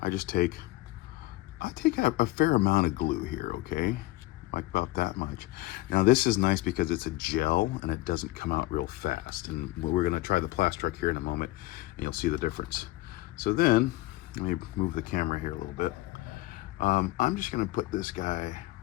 I take a fair amount of glue here, okay? Like about that much. Now this is nice because it's a gel and it doesn't come out real fast. And we're gonna try the Plastruck here in a moment and you'll see the difference. So then, let me move the camera here a little bit. I'm just gonna put this guy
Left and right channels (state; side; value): quieter; right; 18.3 dB